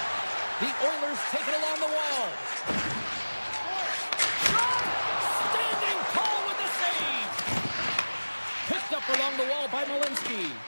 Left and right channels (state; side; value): inverted; both; correlation -1.00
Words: The Oilers take it along the wall. Shot! Standing tall with the save. Picked up along the wall by Malinsky.